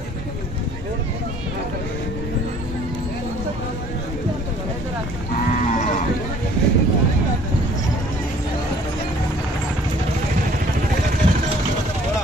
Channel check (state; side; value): normal; both; correlation 0.55